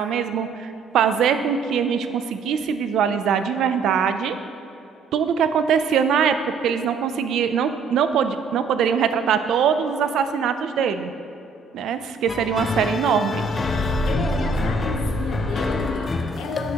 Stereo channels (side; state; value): left; quieter; 4.8 dB